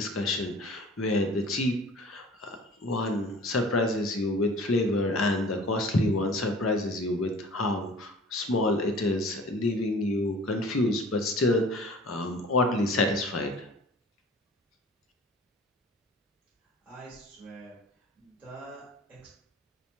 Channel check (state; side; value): normal; both; correlation 0.46